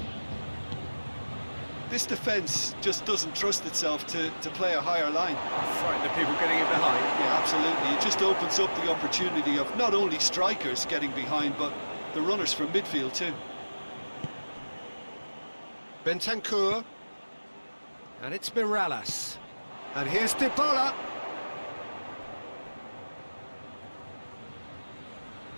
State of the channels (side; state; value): both; inverted; correlation -1.00